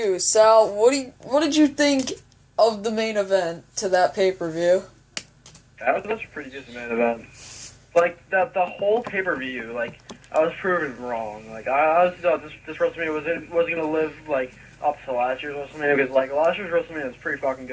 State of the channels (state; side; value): identical; both; correlation 1.00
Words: Sal. What did you think of the main event to that pay-per-view? That was a pretty decent main event. Like, the whole pay-per-view, like, I was proven wrong. Like, I honestly thought this WrestleMania wasn't going to live, like, up to last year's WrestleMania, because, like, last year's WrestleMania was pretty fucking